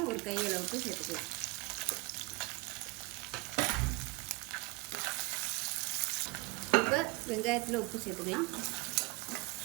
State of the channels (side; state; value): left; quieter; 28.0 dB